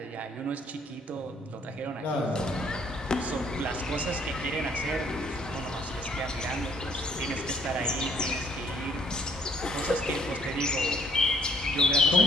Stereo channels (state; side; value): normal; both; correlation 0.62